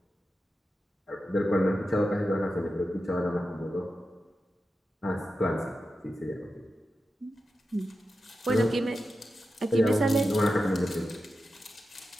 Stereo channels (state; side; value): normal; both; correlation 0.91